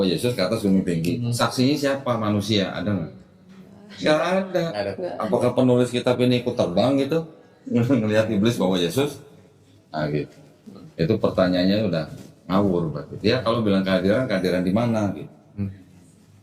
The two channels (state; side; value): identical; both; correlation 1.00